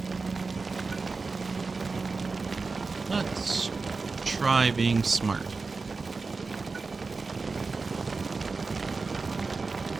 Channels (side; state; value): left; quieter; 4.2 dB